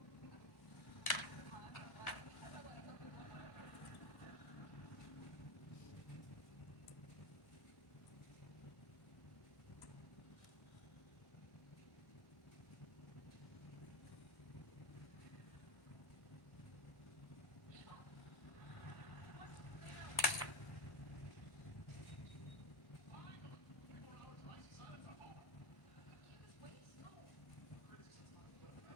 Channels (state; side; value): late; right; 1.1 ms